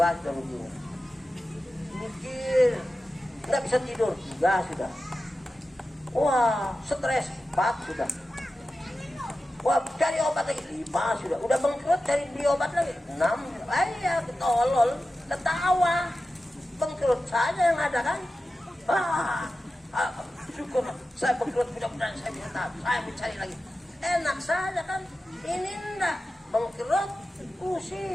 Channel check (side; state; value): both; normal; correlation 0.93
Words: ruginya. Mikir, nggak bisa tidur 3 sudah. Wah, stres 4 sudah. Wah, cari obat lagi 5 sudah. Udah bangkrut cari beli obat lagi 6. Ayah, ketolol, ketawa. Bangkrut saja yang ada kan? Syukur saya bangkrut, mudah-mudahan saya bisa tahu, saya mencari lagi. Enak saja kan? Ini enggak bangkrut,